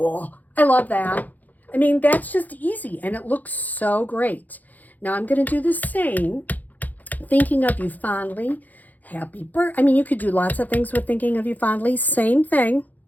I love that. I mean, that's just easy, and it looks so great. Now, I'm going to do the same. Thinking of you fondly. Happy birthday. I mean, you could do lots of things with thinking of you fondly. Same thing.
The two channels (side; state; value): right; late; 0.081 ms